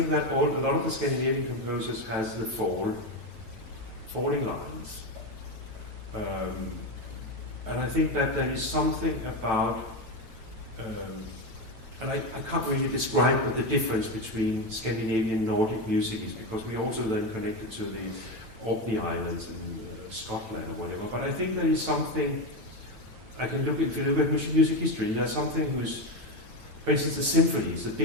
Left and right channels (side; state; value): left; late; 9.1 ms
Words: that a lot of the Scandinavian composers has the falling lines, and I think that there is something about. And I can't really describe what the difference between Scandinavian and Nordic music is, because we also then connected to the Orkney Islands in Scotland or whatever. But I think there is something, if you look at music history, there's something who's, for instance, the symphonies, the